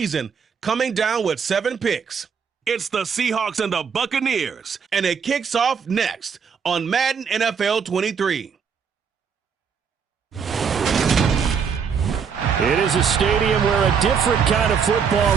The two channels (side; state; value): left; quieter; 6.6 dB